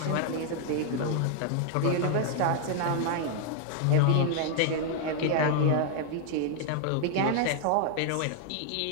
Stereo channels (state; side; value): different; both; correlation 0.00